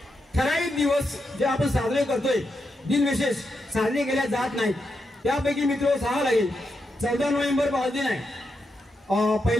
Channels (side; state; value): both; normal; correlation 0.84